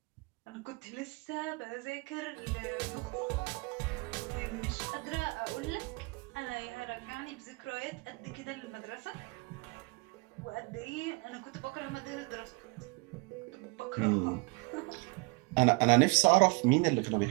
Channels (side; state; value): left; quieter; 28.4 dB